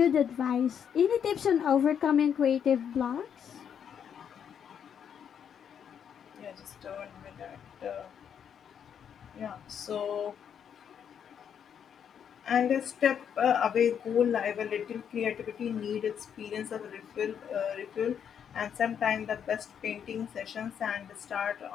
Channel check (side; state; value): right; quieter; 8.2 dB